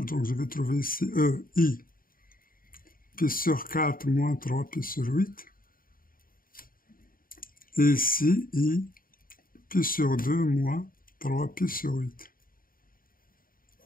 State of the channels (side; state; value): right; late; 0.41 ms